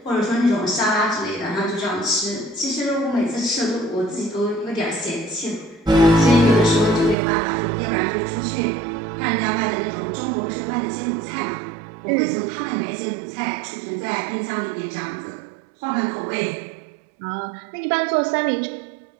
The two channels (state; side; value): drops out; left; at 7.2 s